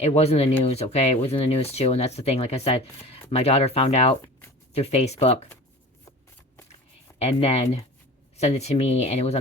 was in the news, okay? It was in the news too, and that's the thing. Like I said, my daughter found out through Facebook and then sent it to me, and it was on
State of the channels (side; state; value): both; normal; correlation 0.38